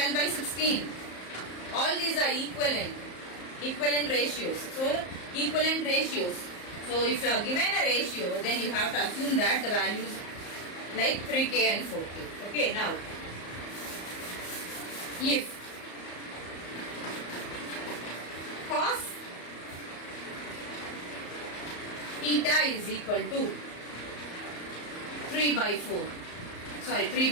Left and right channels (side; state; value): right; late; 34 ms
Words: by 16. All these are equivalent ratios. So, equivalent ratios. So, if you are given a ratio, then you have to assume that the values like 3k and 4k. Okay, now, if cos theta is equal to 3 by 5.